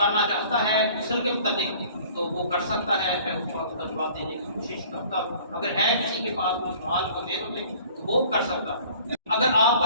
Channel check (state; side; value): inverted; both; correlation -0.50